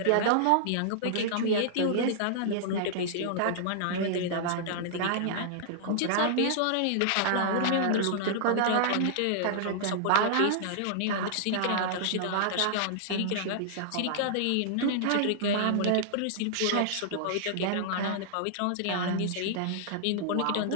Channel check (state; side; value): different; both; correlation -0.01